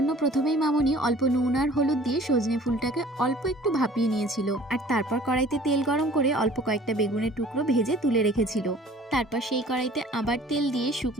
প্রথমেই মামনি অল্প নুন আর হলুদ দিয়ে সজনে ফুলটাকে অল্প একটু ভাপিয়ে নিয়েছিল, আর তারপর কড়াইতে তেল গরম করে অল্প কয়েকটা বেগুনের টুকরো ভেজে তুলে রেখেছিল। তারপর সেই কড়াইতে আবার তেল দিয়ে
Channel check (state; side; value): normal; both; correlation 0.50